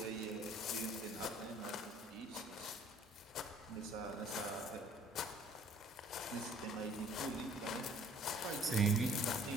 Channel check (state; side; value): normal; both; correlation 0.56